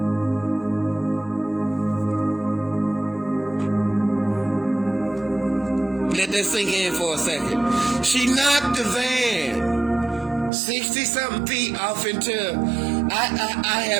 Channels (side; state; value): left; drops out; at 10.5 s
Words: Let that sink in for a second. She knocked the van 60-something feet off into... I